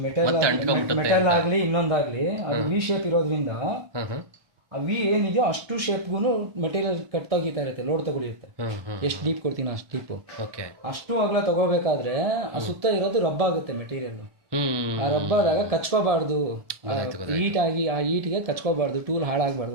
Metal ಆಗ್ಲಿ ಇನ್ನೊಂದಾಗ್ಲಿ ಅದು V shape ಇರೋದ್ರಿಂದ ಆ ವಿ ಏನಿದೆಯೋ ಅಷ್ಟು ಶೇಪ್ಗೂ ಮೆಟೀರಿಯಲ್ ಕಟ್ ತೆಗಿತಾ ಇರುತ್ತೆ, ಲೋಡ್ ತಗೊಳಿರುತ್ತೆ. ಎಷ್ಟು ಡೀಪ್ ಕೊಡ್ತೀನಿ ಅಷ್ಟು ಡೀಪು. ಅಷ್ಟು ಅಗಲ ತಗೋಬೇಕಾದ್ರೆ ಆ ಸುತ್ತ ಇರೋದು ರಬ್ಬ ಆಗುತ್ತೆ ಮೆಟೀರಿಯಲ್. ಆ ರಬ್ಬಾದಾಗ ಕಚ್ಕೋಬಾರ್ದು, ಹೀಟ್ ಆಗಿ ಆ ಹೀಟ್ಗೆ ಕಚ್ಕೋಬಾರ್ದು, ಟೂಲ್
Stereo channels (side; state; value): left; late; 1.6 ms